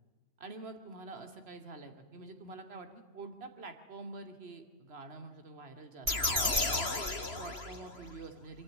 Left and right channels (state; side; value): late; left; 3.0 ms